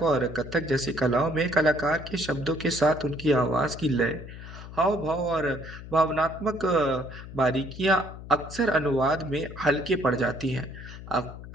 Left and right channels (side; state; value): left; noise; hum, 13 dB below the sound